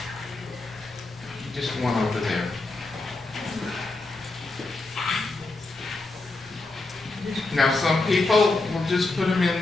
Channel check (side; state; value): right; quieter; 3.3 dB